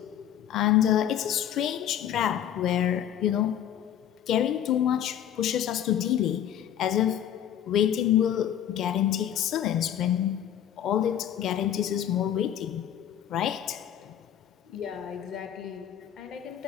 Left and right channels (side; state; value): right; quieter; 10.4 dB